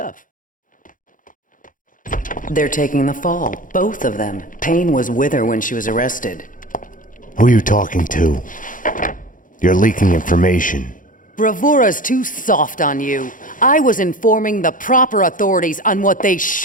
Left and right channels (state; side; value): late; right; 0.39 ms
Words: They're taking the fall, both of them. Payne was with her when she was arrested. Who are you talking to? You're leaking information. Bravura's too soft on you. I was informing the proper authorities on what they